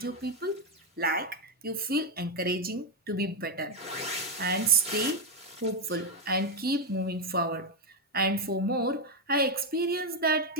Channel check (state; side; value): normal; both; correlation 0.07